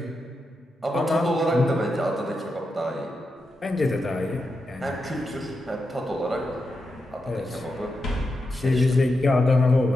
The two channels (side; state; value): both; normal; correlation 0.87